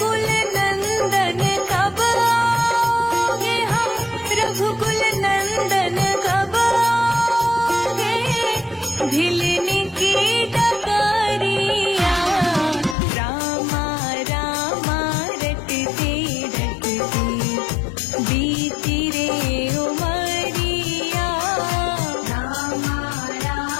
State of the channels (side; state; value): right; drops out; at 13.0 s